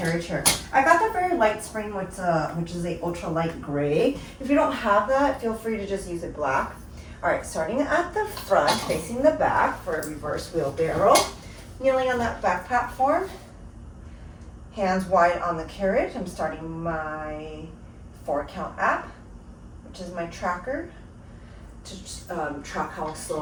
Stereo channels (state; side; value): identical; both; correlation 1.00